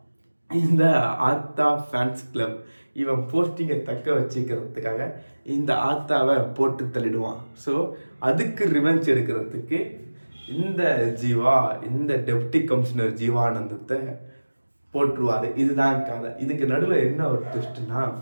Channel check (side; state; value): both; inverted; correlation -1.00